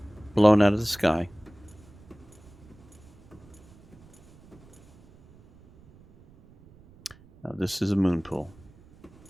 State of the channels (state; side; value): noise; right; rumble, 25 dB below the sound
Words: blown out of the sky. Now this is a moon pool.